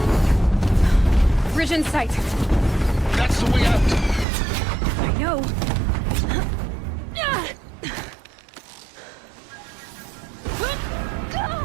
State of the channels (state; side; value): drops out; left; at 4.2 s